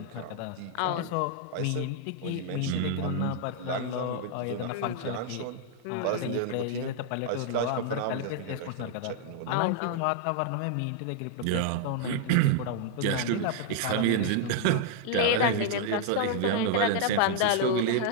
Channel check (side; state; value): both; different; correlation 0.00